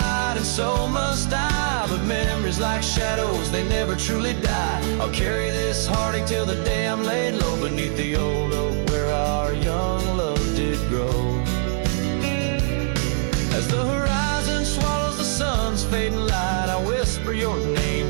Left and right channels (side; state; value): left; silent; digital silence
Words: and so must I, but memories like shadows, they never truly die. I'll carry this heartache till the day I'm laid low beneath the old oak where our young love did grow. As the horizon swallows the sun's fading light, I whisper your name